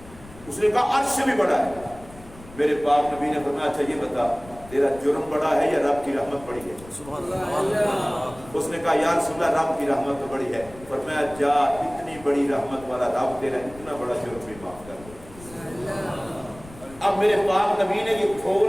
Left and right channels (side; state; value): left; noise; rumble, 19 dB below the sound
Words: اس نے کہا عرش سے بھی بڑا ہے. میرے پاک نبی نے فرمایا اچھا یہ بتا تیرا جرم بڑا ہے یا رب کی رحمت بڑی ہے؟ سبحان اللہ. اس نے کہا یا رسول اللہ رب کی رحمت تو بڑی ہے. فرمایا جا اتنی بڑی رحمت والا رب تیرا اتنا بڑا جرم بھی معاف کر دے. اب میرے پاک نبی نے یہ